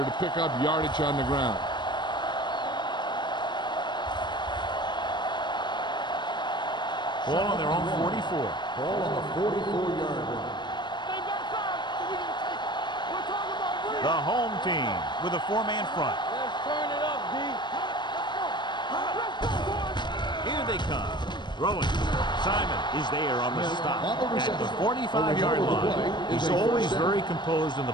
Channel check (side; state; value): right; late; 0.22 ms